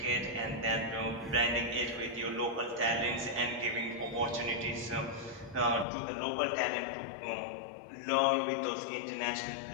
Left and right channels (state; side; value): drops out; right; at 5.9 s